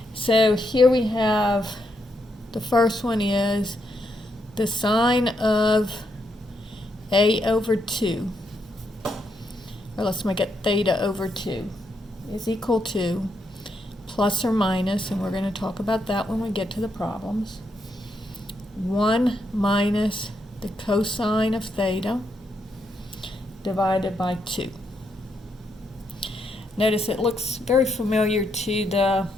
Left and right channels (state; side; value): normal; both; correlation 0.79